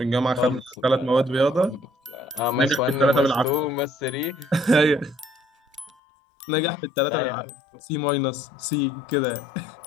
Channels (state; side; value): drops out; right; at 5.9 s